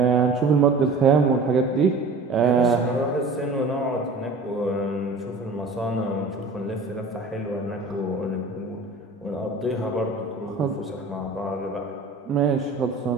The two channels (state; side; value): quieter; left; 3.4 dB